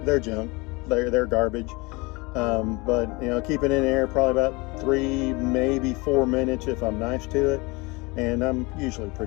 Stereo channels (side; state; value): right; quieter; 25.8 dB